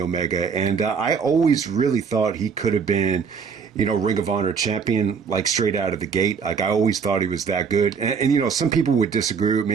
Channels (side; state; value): left; quieter; 6.1 dB